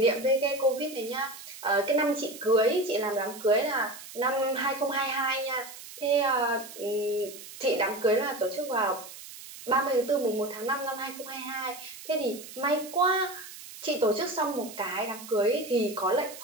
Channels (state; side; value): noise; right; hiss, 14 dB below the sound